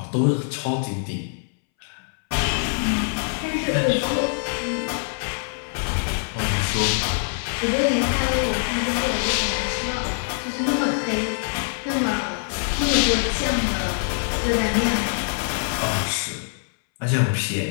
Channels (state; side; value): silent; right; 63 dB below the other